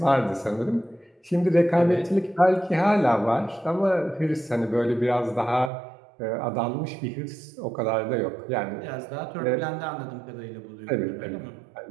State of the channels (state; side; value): drops out; left; at 5.7 s